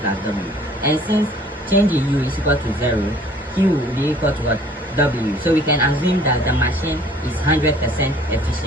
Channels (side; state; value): both; normal; correlation 0.54